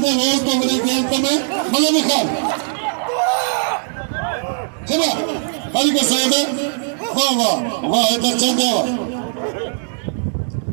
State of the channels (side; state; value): left; silent; digital silence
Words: रोज तो मेरे खेल में मलक खान चला भाई के सैयद वाह वाह वाह इधर चंदे